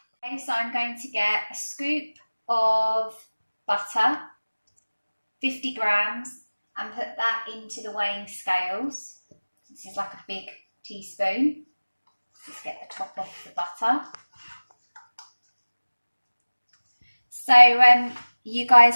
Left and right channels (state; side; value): inverted; both; correlation -1.00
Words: Okay, so I'm going to get a scoop of butter, 50 grams, and put that into the weighing scales. This is like a big teaspoon. Just get the top off the butter. So you